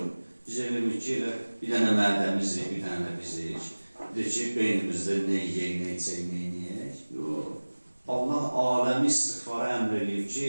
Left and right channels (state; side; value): inverted; both; correlation -1.00